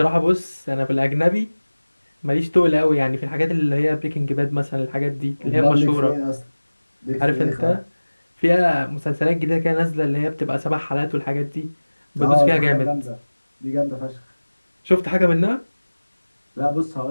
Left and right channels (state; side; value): inverted; both; correlation -1.00